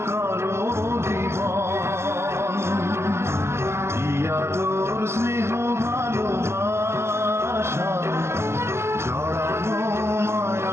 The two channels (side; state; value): left; late; 0.13 ms